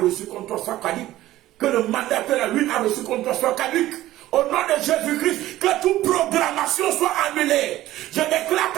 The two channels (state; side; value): quieter; left; 15.2 dB